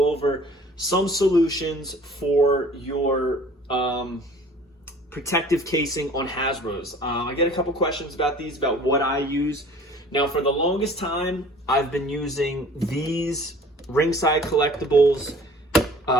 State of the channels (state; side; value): normal; both; correlation 0.49